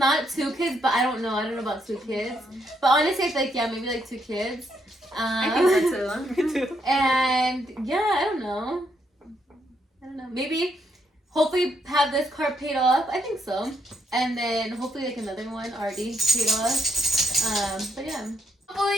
2 kids. But I don't know. I don't know about 2 kids. But honestly, I feel like maybe like 2 kids. I think so too. Me too. And yeah, I don't know. Maybe hopefully have this car paid off. I think so. And then hopefully like another one already paid off. But yeah.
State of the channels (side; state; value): both; normal; correlation 0.76